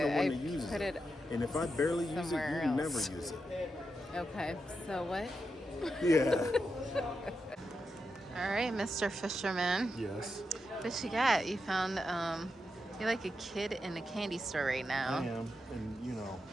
one I that uses put it. it And if I barely use it, you somewhere never else. use it. Okay, so what? Yeah. All right, Mr. Fisherman. Yes. What you got? You found, you're like a kid in a candy store right now. I am, and you know,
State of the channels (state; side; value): normal; both; correlation 0.86